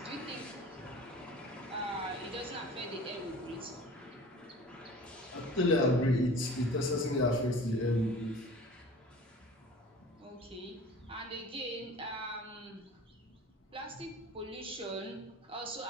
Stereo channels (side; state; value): both; normal; correlation 0.42